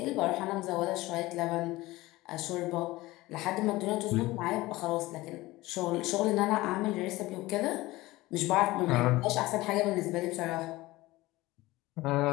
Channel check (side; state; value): right; quieter; 19.1 dB